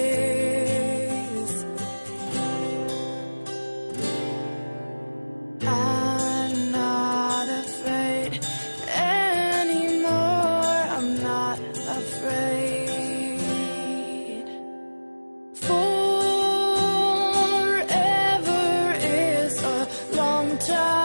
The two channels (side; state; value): both; inverted; correlation -1.00